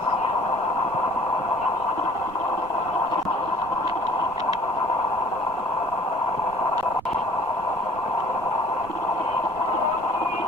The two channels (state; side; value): noise; right; rumble, 19 dB below the sound